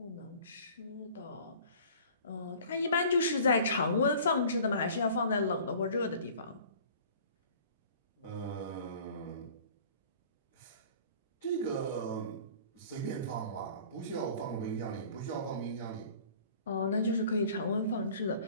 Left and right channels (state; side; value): inverted; both; correlation -0.47